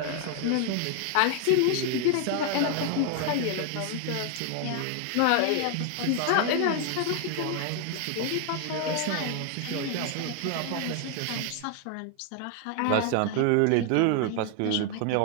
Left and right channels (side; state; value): both; different; correlation 0.00